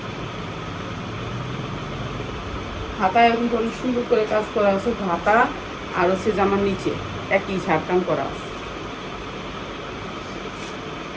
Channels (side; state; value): both; identical; correlation 1.00